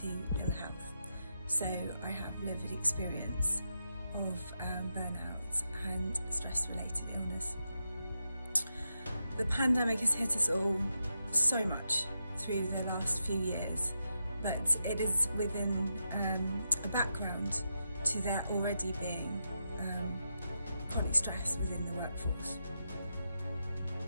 ill health. So I have lived experience of burnout and stress-related illness. The pandemic has hit us all so much through the last few years, but it is within a background to there already being chronic stress within the workforce.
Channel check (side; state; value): both; inverted; correlation -0.86